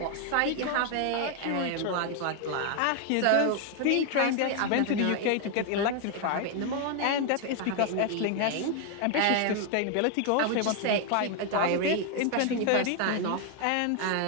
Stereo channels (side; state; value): both; different; correlation 0.00